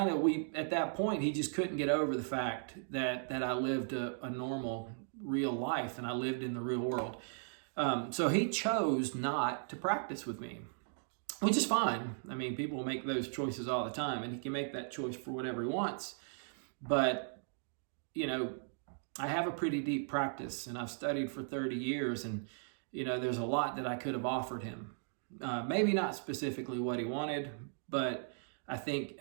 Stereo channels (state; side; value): silent; left; digital silence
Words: at that point, he just couldn't get over the fact that I lived a normal, real life, and I lived in the real world. So he chose not to practice with me, which is fine. I mean, people make those choices all the time, and he can make that choice for whatever he wants. But, I have a pretty deep practice, and I've studied for 30 years, and, there's a lot that I could have offered him. Maybe not specifically what he wanted, but I think